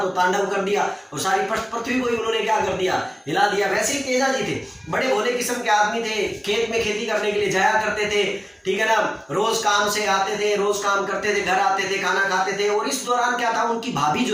तो तांडव कर दिया और सारी पृथ्वी को ही उन्होंने क्या कर दिया, हिला दिया। वैसे ही तेजा जी थे, बड़े भोले किस्म के आदमी थे, खेत में खेती करने के लिए जाया करते थे, ठीक है ना, रोज काम से आते थे, रोज काम करते थे, घर आते थे, खाना खाते थे। और इस दौरान क्या था, उनकी भाभी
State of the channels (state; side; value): identical; both; correlation 1.00